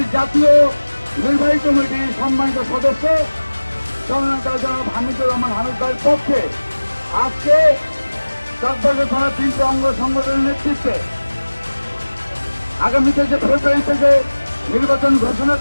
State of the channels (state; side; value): inverted; both; correlation -1.00